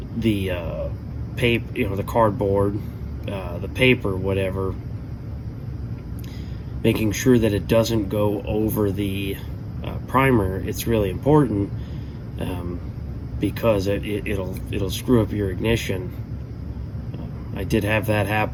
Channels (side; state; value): both; identical; correlation 1.00